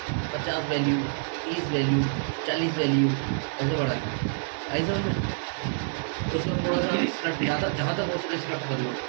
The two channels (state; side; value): silent; left; digital silence